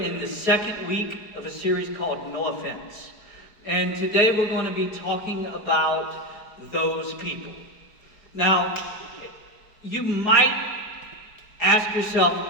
the second week of a series called No Offense. And today we're going to be talking about those people. Now, you might ask yourself,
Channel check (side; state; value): right; late; 4.7 ms